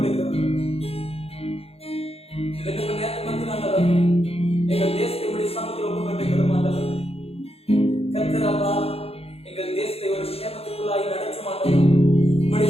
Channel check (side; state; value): right; late; 0.29 ms